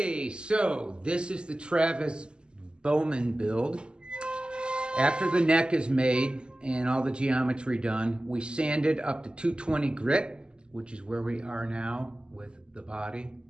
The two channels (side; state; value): left; late; 0.049 ms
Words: so this is the Travis Bowman build. After the neck is made and all the geometry done, we sanded up to 220 grit, which is where we are now with the body